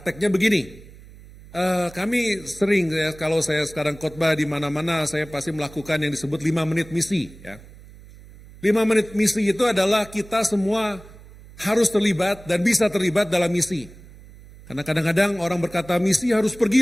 begini. Kami sering ya, kalau saya sekarang khotbah di mana-mana, saya pasti melakukan yang disebut 5 menit misi ya. 5 menit misi itu adalah kita semua harus terlibat dan bisa terlibat dalam misi. Karena kadang-kadang orang berkata misi harus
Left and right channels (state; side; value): noise; right; hum, 20 dB below the sound